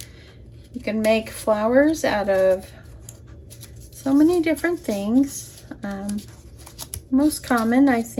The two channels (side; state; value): both; identical; correlation 1.00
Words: You can make flowers out of so many different things. Most common, I